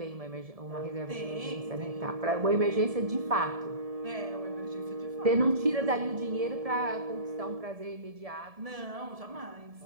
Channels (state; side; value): late; left; 1.7 ms